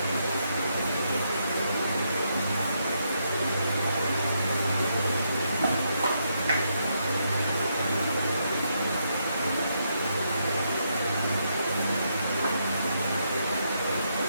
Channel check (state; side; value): inverted; both; correlation -0.79